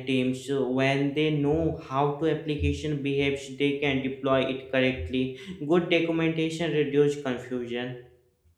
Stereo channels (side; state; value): both; identical; correlation 1.00